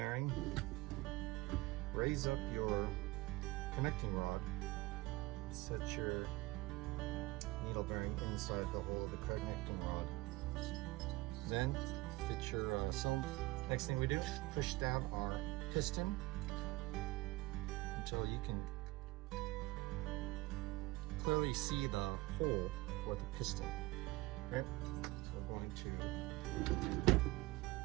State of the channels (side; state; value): left; quieter; 20.0 dB